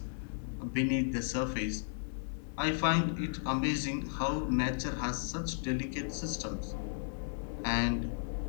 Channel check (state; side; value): silent; right; 55 dB below the other